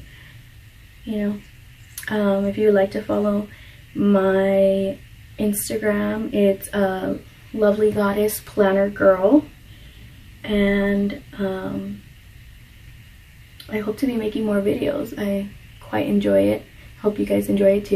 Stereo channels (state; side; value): identical; both; correlation 1.00